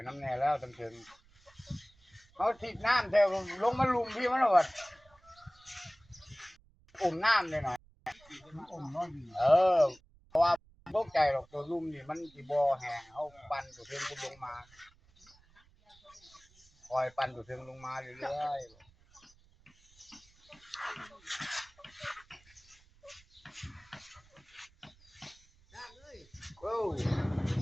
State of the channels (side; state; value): right; noise; rumble, 29 dB below the sound